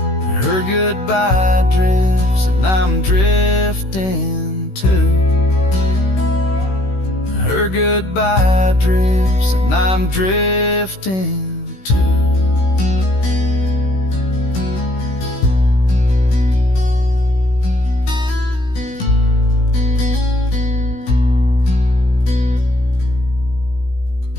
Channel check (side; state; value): right; late; 16 ms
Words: Her goodbye drifts and I'm drifting too. Her goodbye drifts and I'm drifting too.